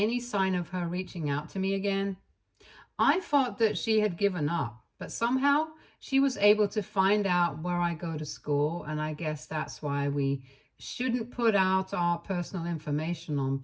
sign of her reaching out to me again, I thought that she had given up, but somehow she was able to find out where I go to school, and I guess that's why we shouldn't put out our personal information on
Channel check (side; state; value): both; identical; correlation 1.00